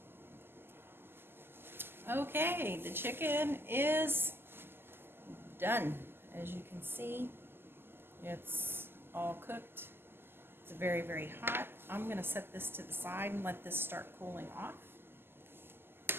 Okay, the chicken is done. As you can see, it's all cooked. It's very, very hot. I'm going to set this to the side and let this start cooling off,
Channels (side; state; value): left; late; 0.11 ms